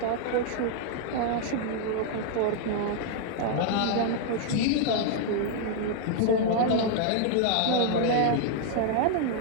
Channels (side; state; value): both; different; correlation 0.00